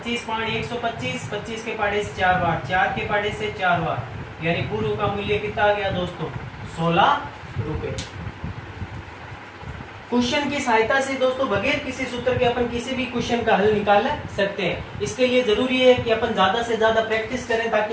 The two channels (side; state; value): both; identical; correlation 1.00